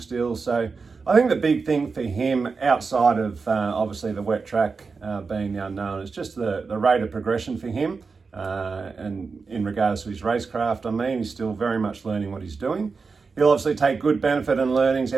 So I think the big thing for him, outside of obviously the wet track being the unknown, is just the rate of progression for him. And in regards to his racecraft, he's still very much learning what he's doing. He'll obviously take good benefit and learnings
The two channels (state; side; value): quieter; left; 4.7 dB